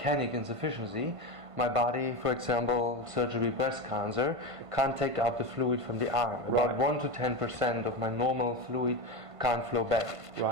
insufficiency, my body, for example, surgery breast cancer, can't take out the fluid from the arm. About 1 to 10% of my normal fluid can't flow back.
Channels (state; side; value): late; left; 1.5 ms